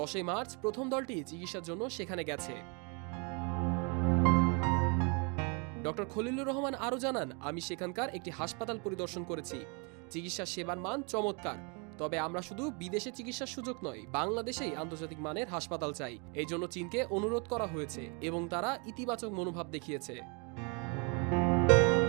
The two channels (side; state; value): left; quieter; 33.9 dB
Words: মার্চ প্রথম দলটি চিকিৎসার জন্য সেখানে গেছে। ডক্টর খলিলুর রহমান আরও জানান, আমি সেখানকার একটি হাসপাতাল পরিদর্শন করেছি। চিকিৎসা সেবার মান চমৎকার। তবে আমরা শুধু বিদেশে চিকিৎসার সুযোগ নয়, বাংলাদেশেই আন্তর্জাতিক মানের হাসপাতাল চাই। এই জন্য চীনকে অনুরোধ করা হয়েছে এবং তারা ইতিবাচক মনোভাব দেখিয়েছে।